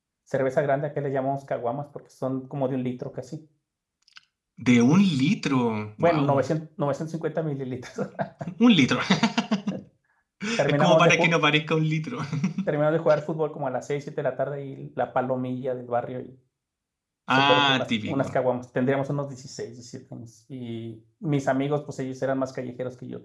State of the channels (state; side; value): identical; both; correlation 1.00